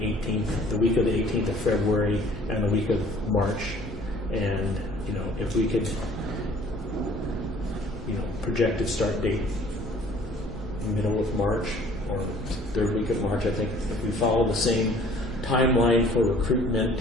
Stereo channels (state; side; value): normal; both; correlation 0.53